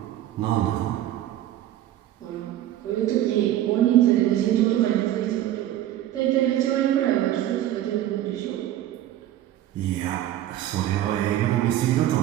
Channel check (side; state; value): left; quieter; 12.9 dB